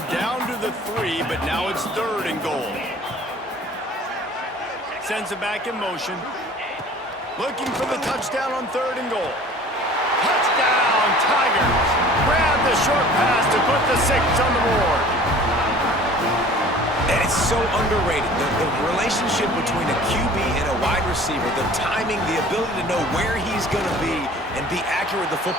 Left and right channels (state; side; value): normal; both; correlation 0.47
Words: down to the 3, but now it's 3rd and goal. Sends it back in motion. Looking for the touchdown on 3rd and goal. Touchdown, Tigers! Grab the short pass to put the 6 on the board. And it's so underrated. The relationship between a QB and a wide receiver, the timing, the ability to know where he's going to be and be accurate with the